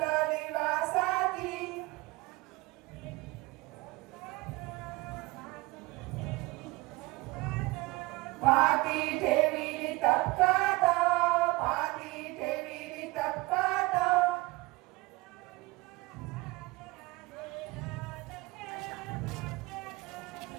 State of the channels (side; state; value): left; quieter; 22.3 dB